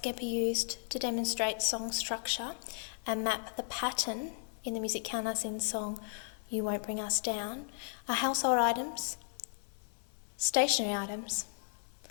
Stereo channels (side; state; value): right; silent; 54 dB below the other